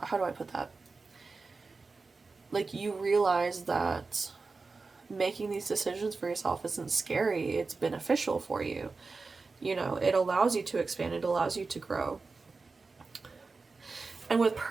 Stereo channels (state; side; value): quieter; left; 4.1 dB